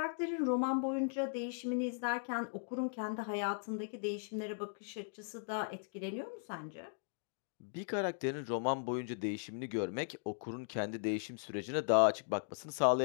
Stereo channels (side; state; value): right; silent; digital silence